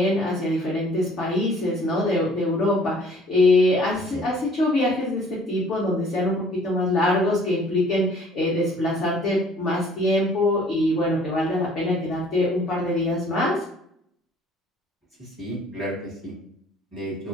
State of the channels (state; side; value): normal; both; correlation 0.55